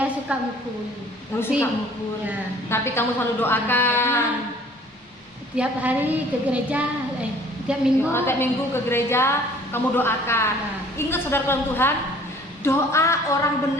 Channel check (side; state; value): both; normal; correlation 0.53